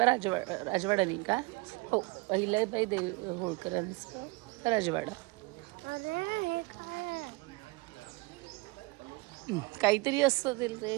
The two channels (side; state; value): left; quieter; 25.6 dB